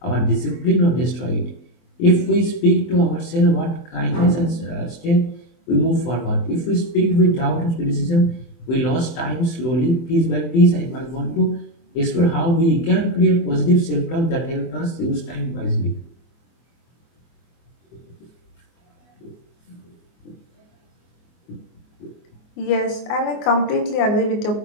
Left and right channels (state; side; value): late; right; 24 ms